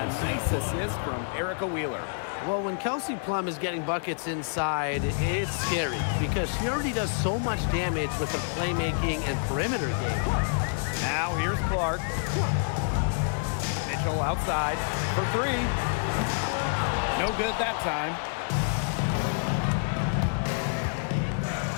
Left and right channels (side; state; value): right; silent; digital silence